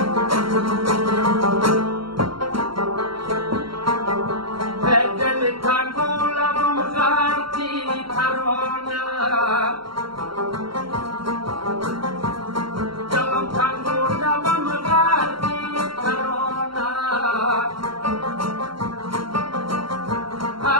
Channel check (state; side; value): late; left; 0.73 ms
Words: دل تنگو لبم غرقی ترانه، دلم تنگو لبم غرقی ترانه،